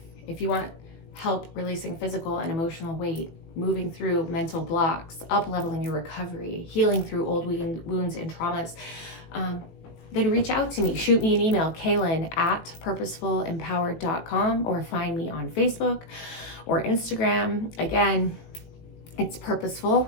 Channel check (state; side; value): late; right; 18 ms